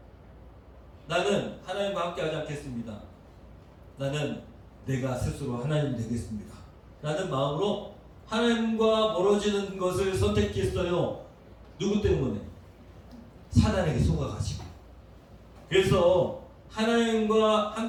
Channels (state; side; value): identical; both; correlation 1.00